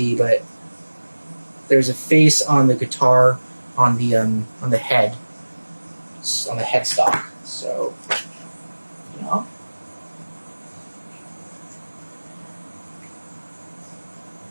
but there's a face on the guitar on the head, on the headstock. So, you know.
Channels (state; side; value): inverted; both; correlation -1.00